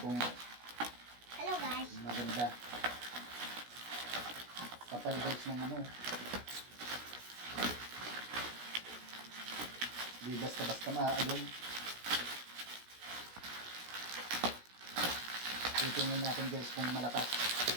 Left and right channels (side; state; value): left; late; 17 ms